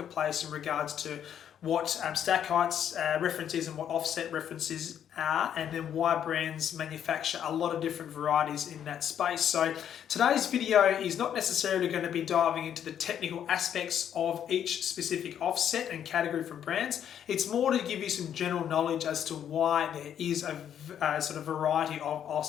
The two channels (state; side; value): quieter; right; 9.4 dB